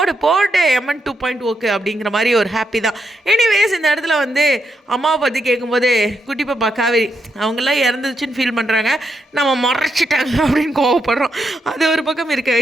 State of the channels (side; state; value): both; normal; correlation 0.81